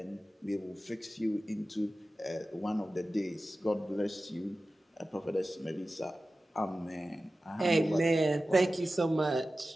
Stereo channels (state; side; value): normal; both; correlation 0.95